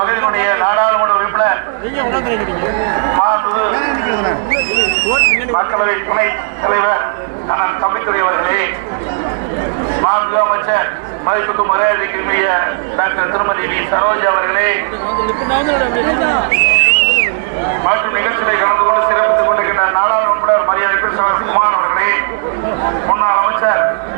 நாடாளுமன்ற உறுப்பினர் மக்களவை துணைத் தலைவர் அண்ணன் தம்பித்துறை அவர்களே, மாண்பு அமைச்சர் மதிப்புக்கு மரியாதைக்குரிய டாக்டர் திருமதி வி சரோஜா அவர்களே மற்றும் நிகழ்ச்சிகளை கலந்து கொண்டு சிறப்பித்துக் கொண்டிருக்கின்ற நாடாளுமன்ற மரியாதைக்குரிய குமார் அவர்களே, முன்னாள் அமைச்சர்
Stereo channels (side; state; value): left; silent; digital silence